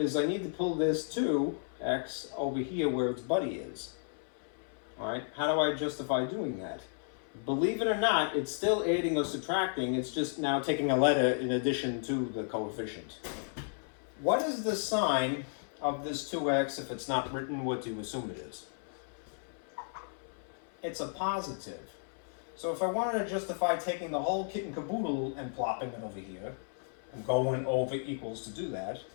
I need to pull this 2x over here where its buddy is. All right, how do I justify doing that? Believe it or not, it's still adding or subtracting. It's just now taking a letter in addition to the coefficient. What is the sign of this 2x if it's not written? What do you assume it is? It's a positive. So if I wanted to justify taking the whole kit and caboodle and plopping it over here, and going over equals to do that,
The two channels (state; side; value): silent; right; 55 dB below the other